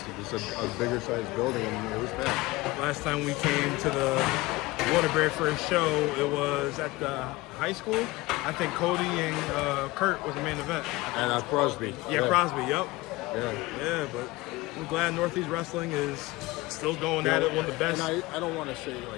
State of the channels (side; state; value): right; quieter; 20.6 dB